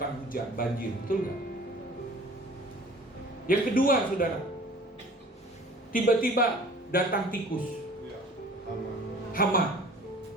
hujan, banjir, betul nggak? Yang kedua, saudara, tiba-tiba datang tikus, Iya. hama,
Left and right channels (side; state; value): both; normal; correlation 0.47